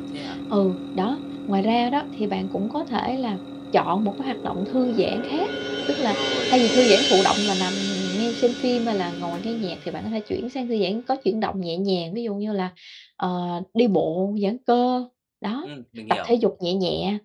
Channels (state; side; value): identical; both; correlation 1.00